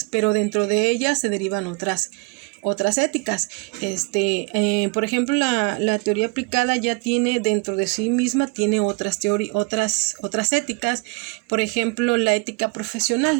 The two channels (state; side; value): quieter; left; 28.9 dB